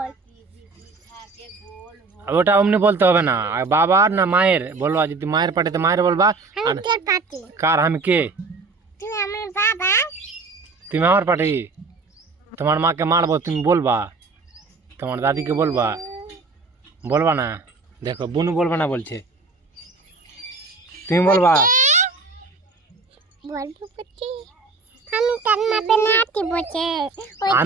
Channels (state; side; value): quieter; left; 3.9 dB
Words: ওটা অমনি বলতে হবে না। আর বাবার না মায়ের বলবা। যদি মায়ের পার্টিতে মায়ের বলবা। আমি তোর পাটি। কার? আমি কে? তুই আমার বাবা। তুমি আমার পার্টি। তোমার মাকে মারবো, তুমি বলবা। তোমার দাদিকে বলবা। বলবা না? দেখো বুনু বলবা না বলছে, তুমি বলবা। বলবো বটে, আমি তোর মা পেনাতি বটে।